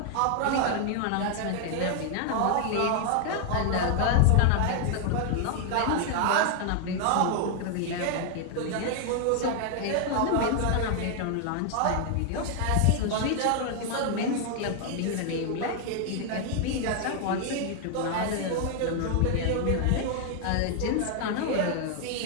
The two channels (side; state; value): both; different; correlation 0.00